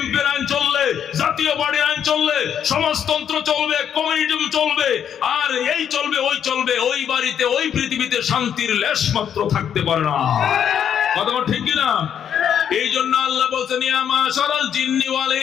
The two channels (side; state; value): right; quieter; 8.8 dB